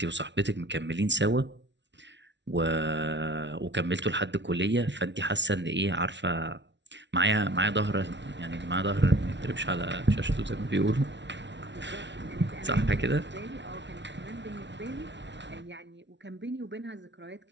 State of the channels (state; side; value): late; left; 0.51 ms